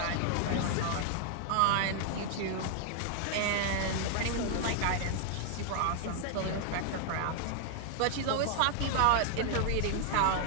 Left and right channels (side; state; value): both; different; correlation 0.00